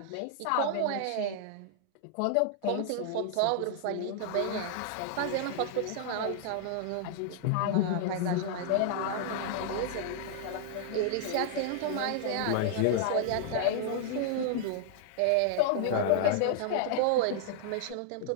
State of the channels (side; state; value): both; different; correlation -0.01